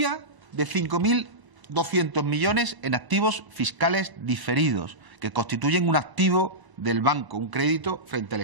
de 5.200 millones en activos fiscales diferidos, que constituyen un activo del banco, un crédito frente al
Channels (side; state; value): left; late; 1.0 ms